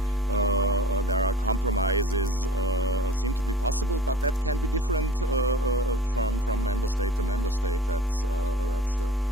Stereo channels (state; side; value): normal; both; correlation 0.42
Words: there are compromises seem to be possible, but that can be different from member state to member state. That's